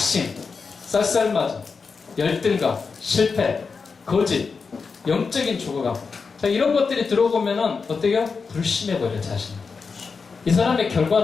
쌀쌀맞음, 열등감, 실패, 거짓, 영적인 죽어감. 자, 이런 것들이 들어보면은 어때요? 불신해버려, 자신. 이 사람의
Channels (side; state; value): right; quieter; 5.0 dB